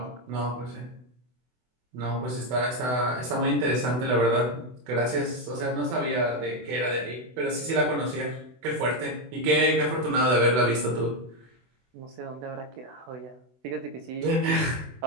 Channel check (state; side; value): late; left; 24 ms